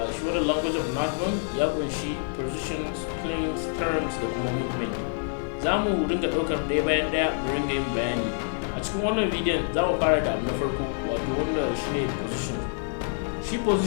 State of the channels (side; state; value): right; silent; 58 dB below the other